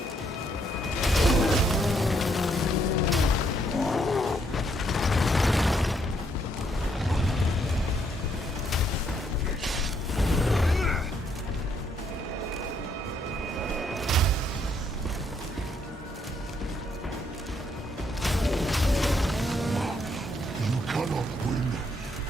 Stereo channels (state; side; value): normal; both; correlation 0.72